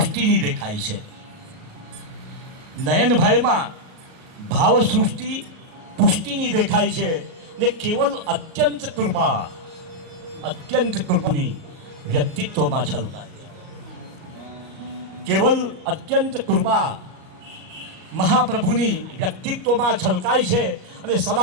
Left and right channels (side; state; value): left; late; 37 ms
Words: દેખાય છે. નયનભાઈમાં ભાવસૃષ્ટિ પુષ્ટિની દેખાય છે ને કેવલ અત્યંત કૃપાની વ્યક્તિત્વમાં છલકાય છે. કેવલ અત્યંત કૃપા મહાપ્રભુની વ્યક્તિત્વમાં છલકાય છે અને